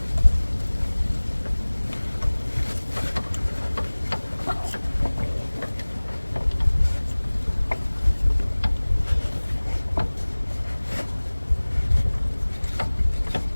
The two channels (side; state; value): both; inverted; correlation -1.00